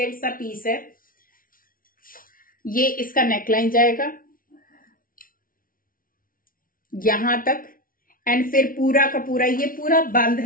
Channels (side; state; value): right; late; 0.41 ms